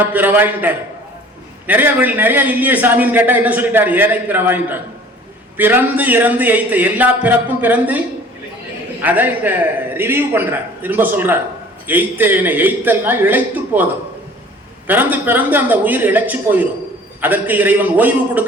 பிறவாயின்ட்டார். நிறைய இல்லையே சாமின்னு கேட்டா என்ன சொல்லிட்டாரு? ஏனை பிறவாயின்ட்டார். பிறந்து இறந்து எய்த்த, எல்லா பிறப்பும் பிறந்து, அதை இந்த ரிவ்யூ பண்றார், திரும்ப சொல்றார். எய்த்தேனை, எய்த்தல்னா இழைத்து போதும். பிறந்து பிறந்து அந்த உயிர் இழைச்சு போயிடும். அதற்கு இறைவன் ஓய்வு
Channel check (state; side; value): normal; both; correlation 0.49